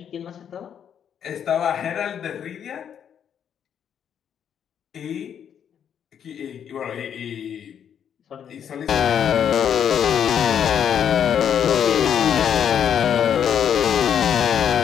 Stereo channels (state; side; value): quieter; right; 8.6 dB